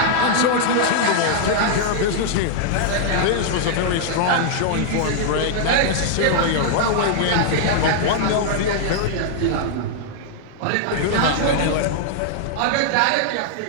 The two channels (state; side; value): different; both; correlation -0.01